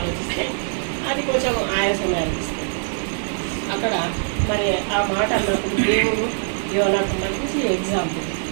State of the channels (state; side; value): silent; left; digital silence